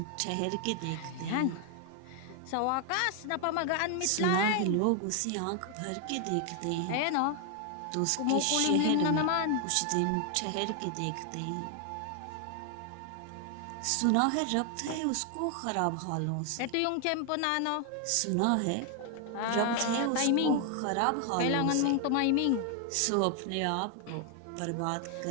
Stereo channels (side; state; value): both; different; correlation 0.00